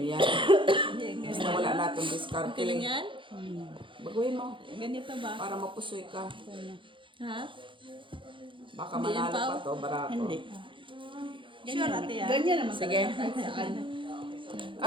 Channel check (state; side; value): late; left; 0.24 ms